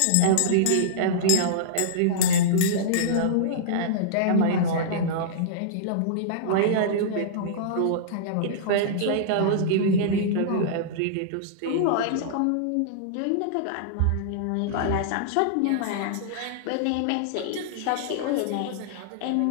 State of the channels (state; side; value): different; both; correlation -0.03